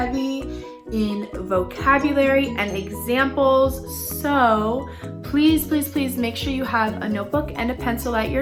in vocabulary and examples. So please make sure you have a notebook and a pencil at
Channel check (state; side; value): identical; both; correlation 1.00